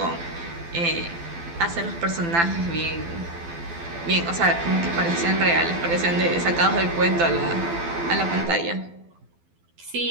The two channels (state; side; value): late; left; 12 ms